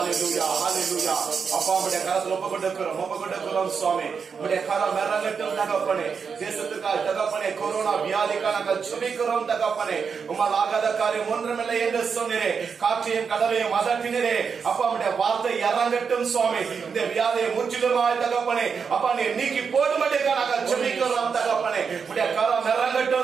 ஹalleluya. அப்பா, உம்முடைய கரத்தில் ஒப்பு கொடுக்கிறோம் சுவாமி. உம்முடைய கரம் இறங்கட்டும் தகப்பனே. தேசத்துக்காக தகப்பனே, கொரோனா வியாதிக்காக நாங்கள் ஜெபிக்கிறோம் தகப்பனே. உம்மால் ஆகாத காரியம் ஒன்றுமில்லை என்று சொன்னீரே. காற்றையும் கடலையும் அதட்டினீரே. அப்பா, உம்முடைய வார்த்தை இறங்கட்டும் சுவாமி. இந்த வியாதியை முற்றிலுமாய் தகப்பனே அப்பா நீ நீக்கி போடும்படியாக நாங்கள் ஜெபிக்கிறோம் தகப்பனே. உம்முடைய கரம்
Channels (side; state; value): left; quieter; 6.0 dB